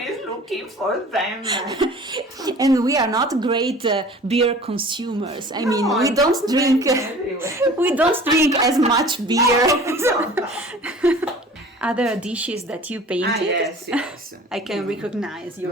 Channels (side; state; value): both; normal; correlation 0.45